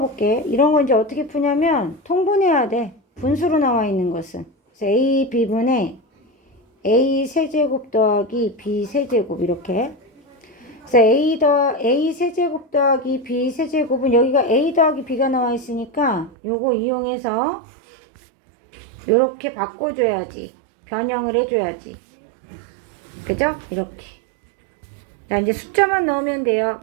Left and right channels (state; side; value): drops out; left; at 16.4 s